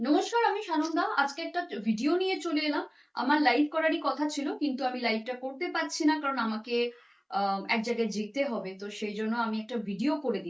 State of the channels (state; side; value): identical; both; correlation 1.00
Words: আমি সানন্দা। আজকে একটা ভিডিও নিয়ে চলে এলাম। আমার লাইভ করারই কথা ছিল, কিন্তু আমি লাইভটা করতে পারছি না, কারণ আমাকে এক জায়গায় যেতে হবে। তো সেই জন্য আমি একটা ভিডিও করে